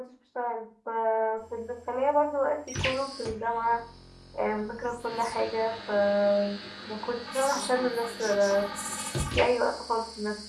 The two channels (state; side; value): identical; both; correlation 1.00